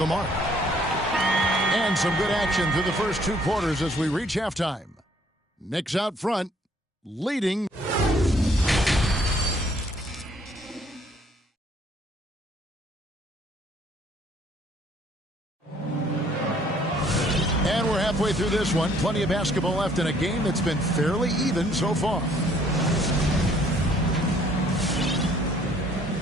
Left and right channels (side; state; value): both; normal; correlation 0.62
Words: mark. And some good action through the first 2 quarters as we reach halftime. Knicks out front, leading. And we're halfway through this one. Plenty of basketball left in a game that's been fairly even so far.